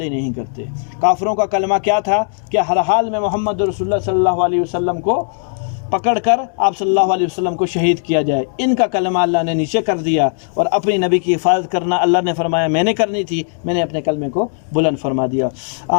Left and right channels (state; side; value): silent; right; digital silence